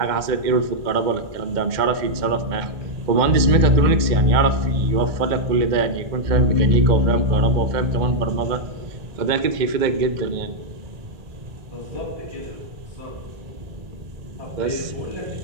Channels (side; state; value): left; late; 2.1 ms